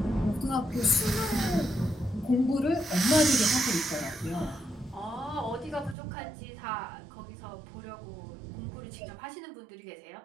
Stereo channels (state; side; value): drops out; left; at 6.0 s